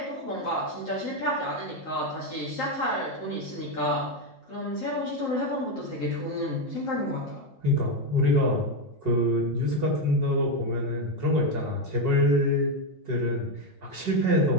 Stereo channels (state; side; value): late; right; 5.5 ms